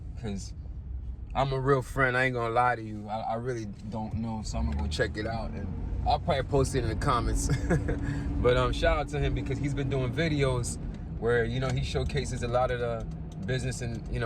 I'm a real friend. I ain't gonna lie to you. I really don't know, so I'm gonna go check it out, and I'll probably post it in the comments. But shout out to him because he's been doing videos where he showcases a lot of the business in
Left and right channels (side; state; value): both; identical; correlation 1.00